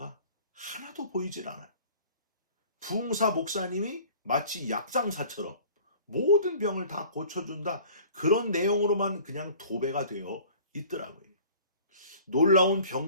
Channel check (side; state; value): both; inverted; correlation -0.48